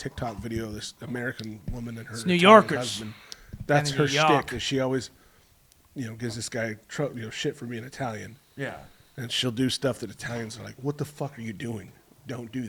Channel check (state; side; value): identical; both; correlation 1.00